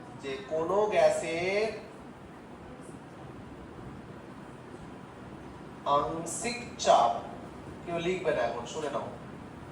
যে কোন গ্যাসের আংশিক চাপ কেউ লিখবে না এখন শুনে নাও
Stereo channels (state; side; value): identical; both; correlation 1.00